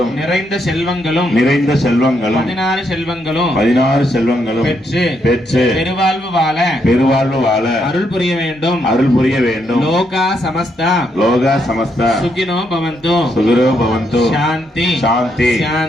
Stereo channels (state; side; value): normal; both; correlation 0.77